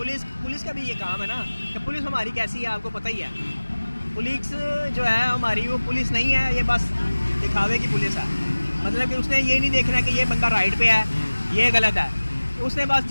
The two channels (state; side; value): inverted; both; correlation -1.00